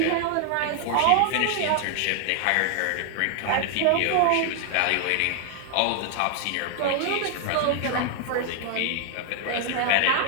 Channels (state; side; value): different; both; correlation 0.00